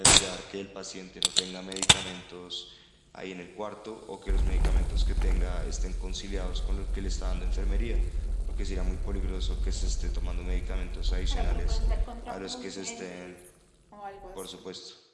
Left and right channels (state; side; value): identical; both; correlation 1.00